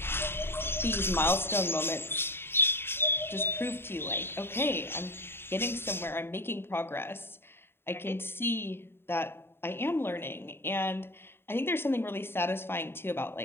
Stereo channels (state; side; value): late; right; 0.11 ms